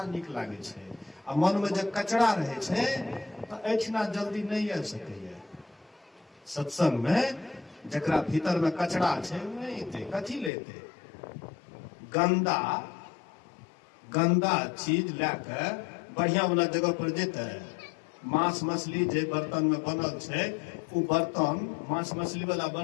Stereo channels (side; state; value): right; drops out; at 10.5 s